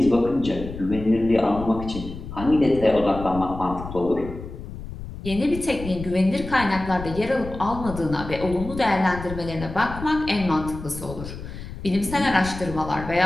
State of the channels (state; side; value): noise; left; rumble, 11 dB below the sound